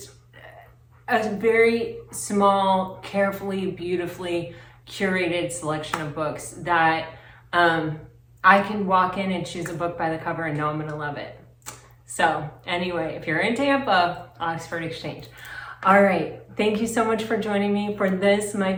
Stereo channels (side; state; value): both; identical; correlation 1.00